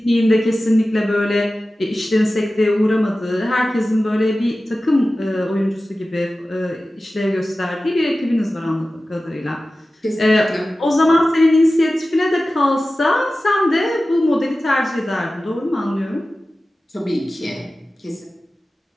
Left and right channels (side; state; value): both; normal; correlation 0.95